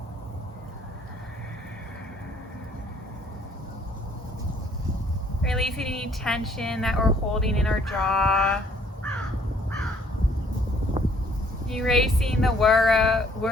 Releasing any tension that we're holding in our jaw. Erasing the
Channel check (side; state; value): both; normal; correlation 0.62